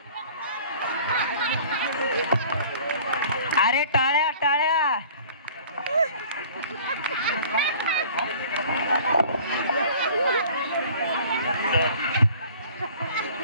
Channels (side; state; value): both; inverted; correlation -0.48